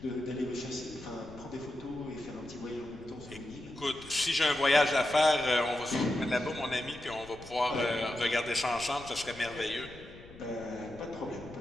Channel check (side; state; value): left; noise; rumble, 18 dB below the sound